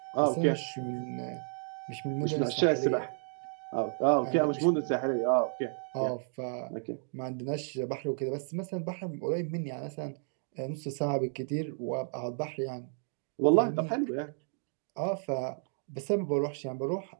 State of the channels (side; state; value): left; silent; 56 dB below the other